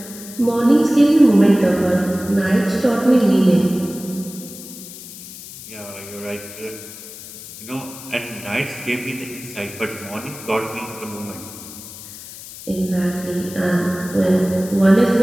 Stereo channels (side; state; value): left; noise; hiss, 14 dB below the sound